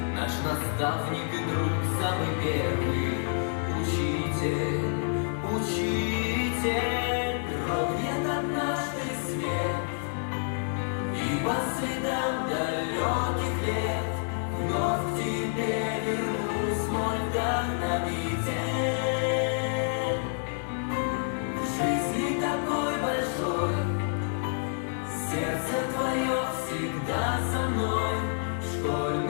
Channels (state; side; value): silent; right; digital silence